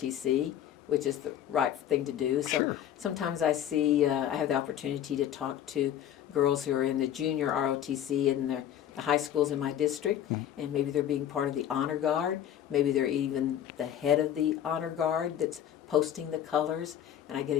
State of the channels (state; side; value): quieter; right; 10.5 dB